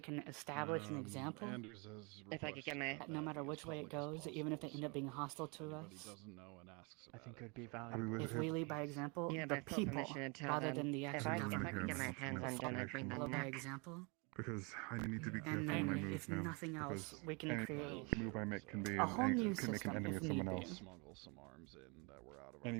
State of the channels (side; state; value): left; quieter; 31.1 dB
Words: establish an example, If I could get my that no matter which way it goes, even if they end up being hostile to us, I think it would be I mean, valuable. if we lead by example, Yeah, the but full people, permission to tell rather them than the if actual I government, could get my hands undone, I'd bring them follow by back. example, Because I need to be careful and on my then moves if now. nothing else, because we can any create move I make can be a whole new can make an system enemy if of someone need else. be. Any